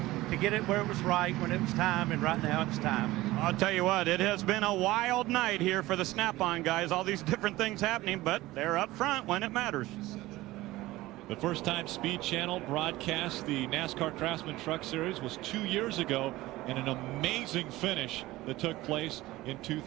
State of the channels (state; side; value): quieter; left; 18.0 dB